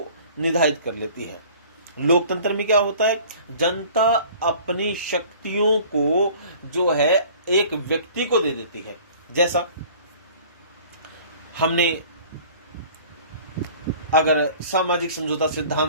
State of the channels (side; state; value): both; inverted; correlation -0.48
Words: निर्धारित कर लेती है। लोकतंत्र में क्या होता है, जनता अपनी शक्तियों को जो है एक व्यक्ति को दे देती है। जैसा हमने अगर सामाजिक समझौता